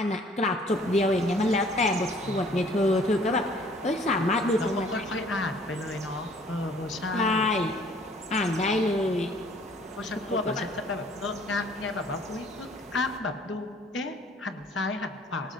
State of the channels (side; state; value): both; normal; correlation 0.56